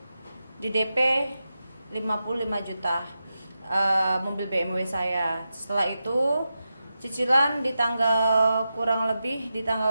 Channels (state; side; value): inverted; both; correlation -0.90